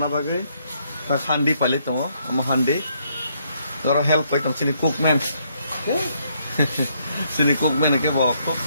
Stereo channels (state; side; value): inverted; both; correlation -0.72